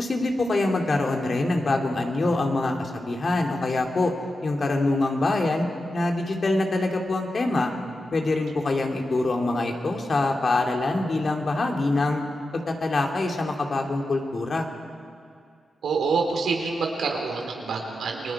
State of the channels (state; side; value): normal; both; correlation 0.90